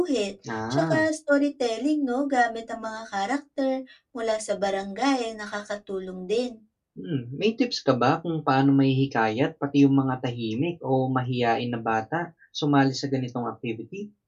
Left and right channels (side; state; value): both; identical; correlation 1.00